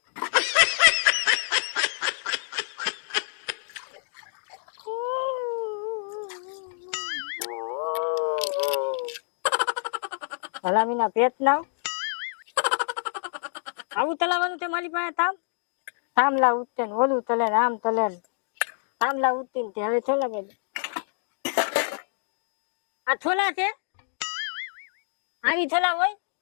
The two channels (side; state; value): right; silent; digital silence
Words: હલામીના પેટ ના આવું તલાવાનું છે મારી પાસે તામ તામલા ઉઠતે ને ઓલું તલે ને આમ તલે ને તામલા ઉઠતી ને હવે છોલા કે આ છોલા છે આવી છોલા હોય